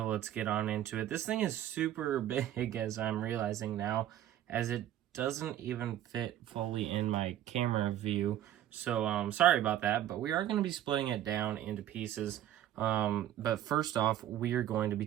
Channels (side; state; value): left; quieter; 12.1 dB